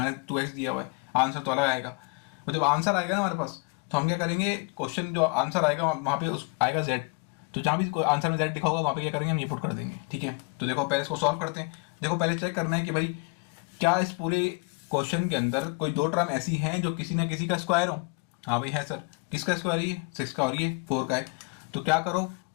2x दिया हुआ है, आंसर तो अलग आएगा। तो जब आंसर आएगा ना हमारे पास, तो हम क्या करेंगे, क्वेश्चन जो आंसर आएगा वहां पे उस आएगा z, तो जहां भी आंसर में z लिखा होगा वहां पे क्या करेंगे, हम ये पुट कर देंगे, ठीक है। तो देखो पहले इसको सॉल्व करते हैं। देखो पहले चेक करना है कि भाई क्या इस पूरे क्वेश्चन के अंदर कोई दो टर्म ऐसी हैं जो किसी ना किसी का स्क्वायर हो। हाँ भाई है सर, किसका स्क्वायर है, ये 6 का और ये 4 का है। तो क्या करो,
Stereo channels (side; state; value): right; quieter; 32.3 dB